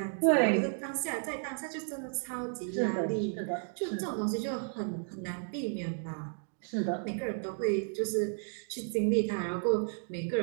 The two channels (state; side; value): silent; left; 56 dB below the other